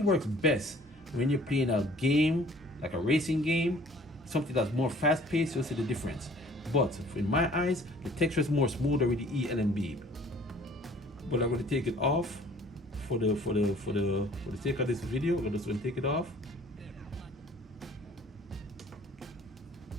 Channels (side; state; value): both; normal; correlation 0.53